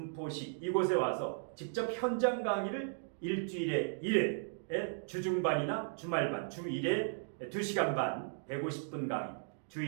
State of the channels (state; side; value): silent; left; digital silence